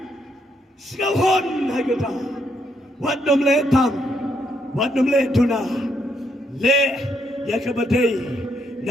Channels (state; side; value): normal; both; correlation 0.75